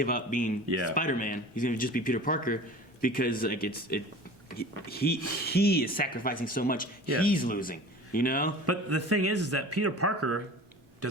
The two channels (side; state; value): both; normal; correlation 0.40